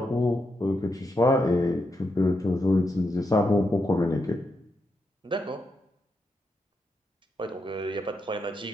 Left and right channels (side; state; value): both; normal; correlation 0.83